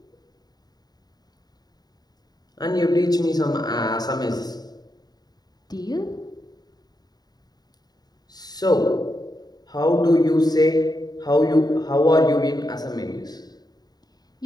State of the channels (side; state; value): right; late; 0.19 ms